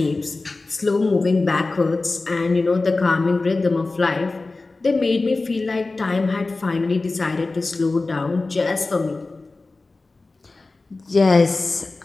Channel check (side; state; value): right; quieter; 3.4 dB